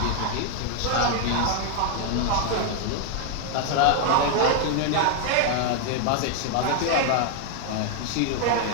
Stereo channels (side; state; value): both; different; correlation 0.00